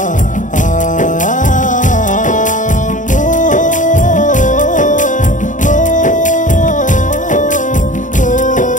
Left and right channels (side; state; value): right; late; 0.37 ms